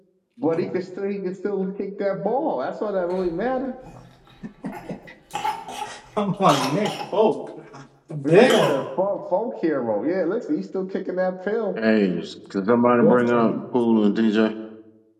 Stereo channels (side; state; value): both; identical; correlation 1.00